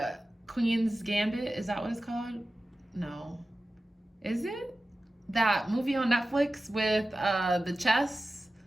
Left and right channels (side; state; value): both; normal; correlation 0.95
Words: Gambit. Is that what it's called? No. Is it? That movie on Netflix with the chess.